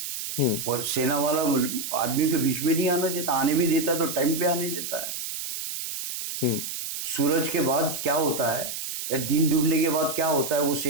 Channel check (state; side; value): noise; right; hiss, 6 dB below the sound